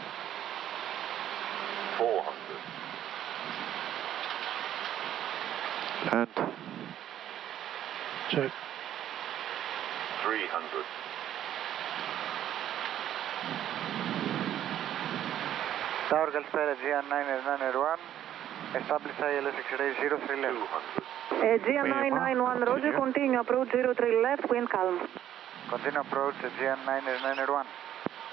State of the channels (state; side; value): quieter; left; 11.3 dB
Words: 400. Land. Check. 300. Tower Galspera GN991, establish ILS X-ray 03 left. 200. GN991, Roger, continue approach 03 left, wind calm. Continue approach GN991.